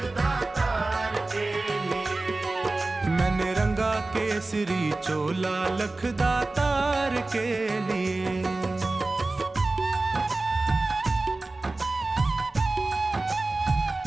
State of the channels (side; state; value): left; quieter; 3.2 dB